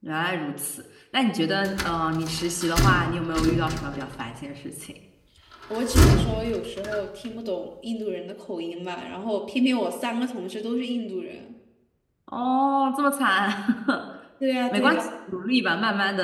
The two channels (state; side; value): identical; both; correlation 1.00